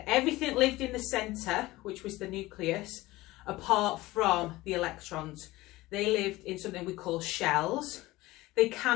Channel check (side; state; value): right; quieter; 18.9 dB